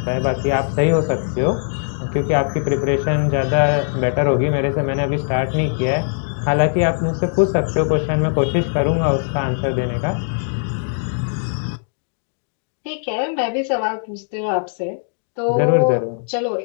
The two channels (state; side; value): silent; right; digital silence